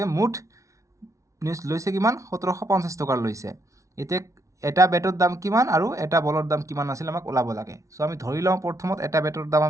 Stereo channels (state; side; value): late; left; 0.15 ms